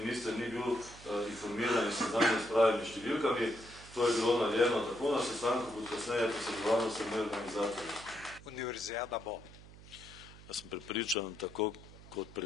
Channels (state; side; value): noise; right; hum, 19 dB below the sound